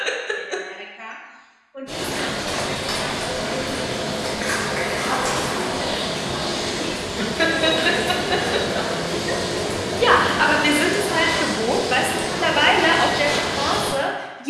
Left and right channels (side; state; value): both; identical; correlation 1.00